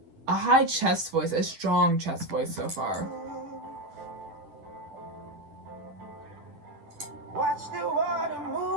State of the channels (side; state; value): left; late; 10 ms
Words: a high chest voice, a strong chest voice so far.